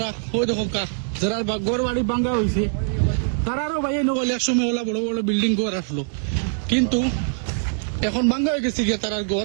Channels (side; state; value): left; silent; digital silence